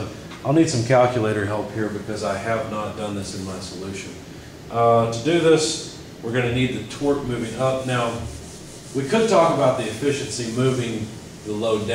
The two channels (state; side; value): identical; both; correlation 1.00